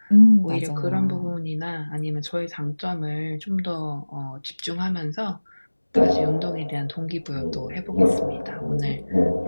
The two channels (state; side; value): inverted; both; correlation -1.00